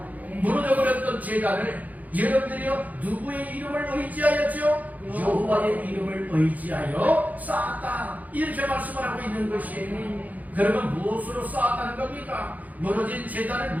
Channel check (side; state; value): left; late; 0.079 ms